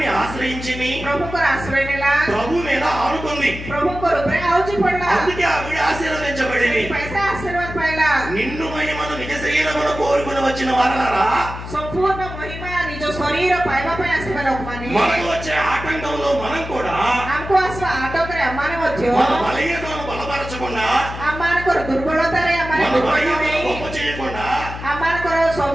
ఆశ్రయించింది, ପ୍ରଭୁଙ୍କର ଆଶ୍ରୟ ନେଲା, ప్రభు మీద ఆనుకుంది. ପ୍ରଭୁଙ୍କର ଉପରେ ଆଉଜି ପଡିଲା। అందుకే ఆవిడ ఆశీర్వదించబడింది. ପଇସା ଆଶୀର୍ବାଦ ପାଇଲା। నిన్ను మహిమను నిజ శరీరమును కోరుకుని వచ్చిన వారలారా, ସମ୍ପୂର୍ଣ୍ଣ ମହିମା ନିଜ ଶରୀର ପାଇବା ପାଇଁ ଆସିବା ଲୋକମାନେ మనకు వచ్చే ఆటంకంలో మనం కూడా ଆମକୁ ଆସିବା ଆଟକରେ ଆମମାନେ ମଧ୍ୟ మన బలహీనతను బలపరచకుండా, ଆମମାନଙ୍କର ଦୁର୍ବଳତାରେ ଆମମାନେ మన ଦୁର୍ବଳ బలహీనతను ନେଇ గొప్ప చేయకుండా, ଆମମାନଙ୍କର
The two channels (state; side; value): noise; left; hum, 10 dB below the sound